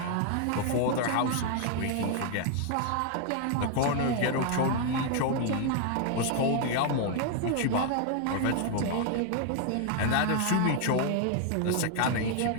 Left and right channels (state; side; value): different; both; correlation 0.00